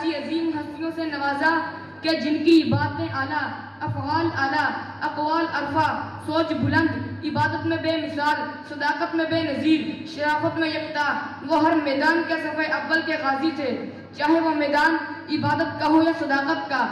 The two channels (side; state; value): both; identical; correlation 1.00